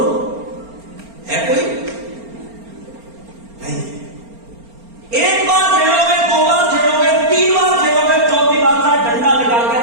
है कोई? नहीं। एक बार खेलोगे, दो बार खेलोगे, तीन बार खेलोगे, चौथी बार का डंडा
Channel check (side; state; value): left; late; 4.3 ms